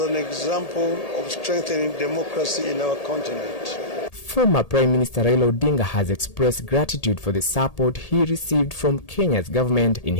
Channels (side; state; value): right; late; 1.8 ms